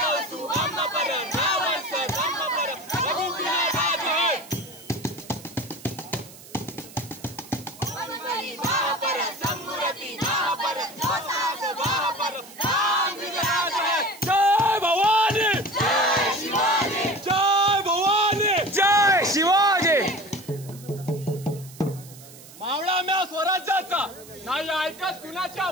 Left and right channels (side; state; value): right; noise; hiss, 19 dB below the sound